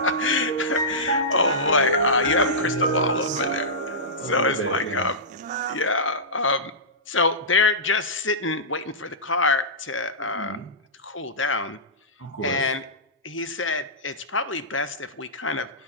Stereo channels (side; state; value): both; normal; correlation -0.17